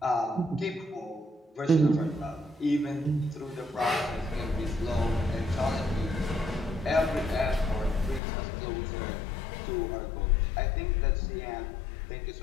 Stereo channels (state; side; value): drops out; right; at 8.2 s